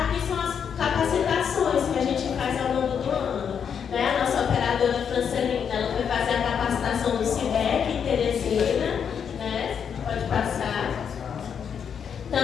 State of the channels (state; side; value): quieter; right; 7.4 dB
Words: são as capacitações que a gente faz ao longo do ano. Né? A nossa operadora Francelina, ela foi fazer a capacitação do CIDEC em Teresina, né? Pode passar.